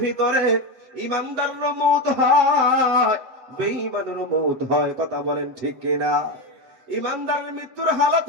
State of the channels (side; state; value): left; late; 7.8 ms